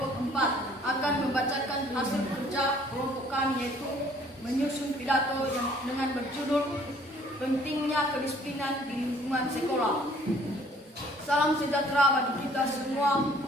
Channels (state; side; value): normal; both; correlation 0.58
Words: 4 akan membacakan hasil kerja kelompok kami, yaitu menyusun pidato yang dengan berjudul Pentingnya Kedisiplinan di Lingkungan Sekolah. Salam sejahtera bagi kita semua.